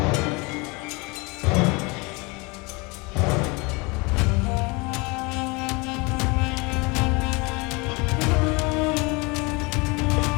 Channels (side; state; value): right; quieter; 27.2 dB